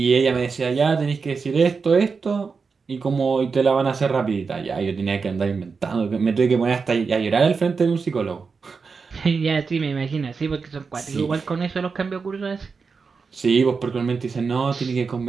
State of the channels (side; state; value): left; quieter; 5.0 dB